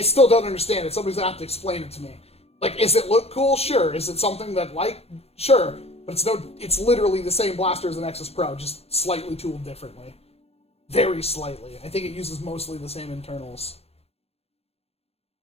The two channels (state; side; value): late; right; 0.29 ms